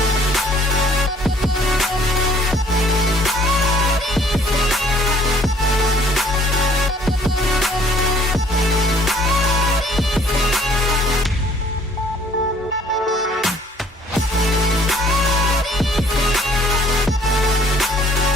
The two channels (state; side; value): normal; both; correlation 0.59